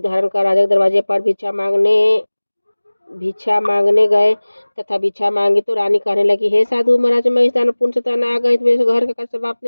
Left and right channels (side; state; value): both; inverted; correlation -1.00